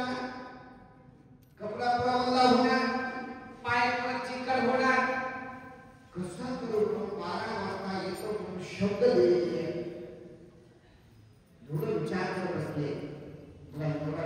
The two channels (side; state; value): both; identical; correlation 1.00